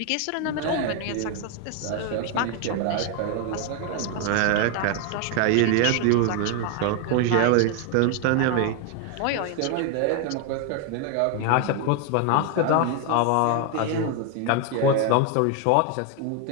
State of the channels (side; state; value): both; different; correlation 0.01